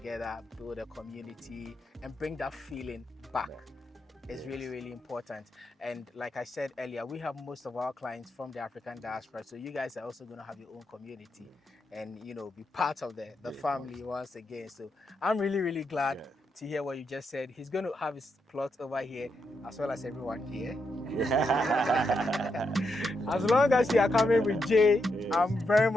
build a community, and bring that feeling back. It's really, really important. And like I said earlier, we have most of our clients from the African diaspora. So you guys are also going to have your own community and, be part of the family once again. So I'm really, really glad to hear what you just said. He's going to have his plot over here as well as everyone here. As long as you are coming with Jay, Yes. I'm very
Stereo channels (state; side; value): normal; both; correlation 0.83